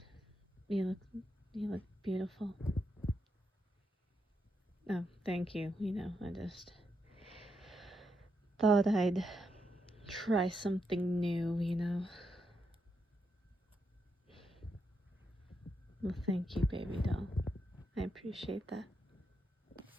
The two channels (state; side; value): normal; both; correlation 0.82